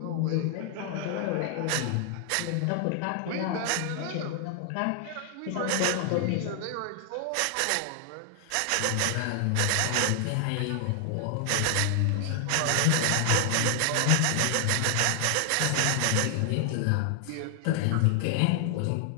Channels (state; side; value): different; both; correlation 0.00